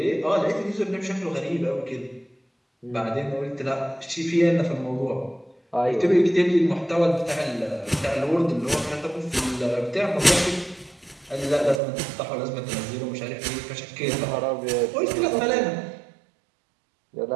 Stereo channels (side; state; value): left; drops out; at 11.8 s